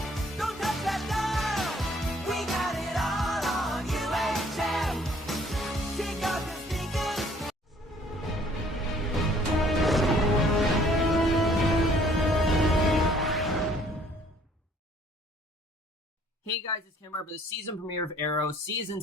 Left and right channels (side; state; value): both; normal; correlation 0.59